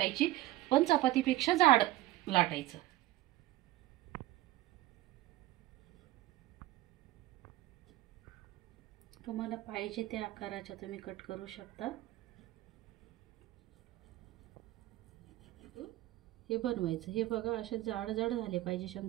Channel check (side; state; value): left; quieter; 16.0 dB